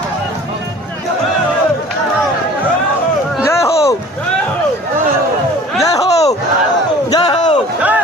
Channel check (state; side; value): normal; both; correlation 0.46